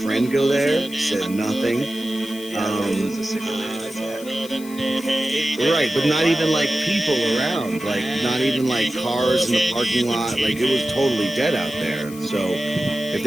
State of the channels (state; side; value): noise; left; hiss, 17 dB below the sound